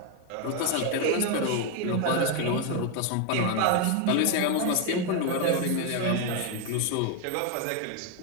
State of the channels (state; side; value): different; both; correlation 0.01